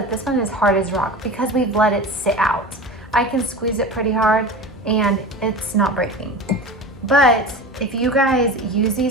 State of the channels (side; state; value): both; normal; correlation 0.31